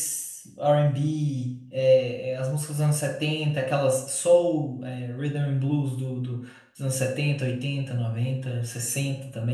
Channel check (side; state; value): both; identical; correlation 1.00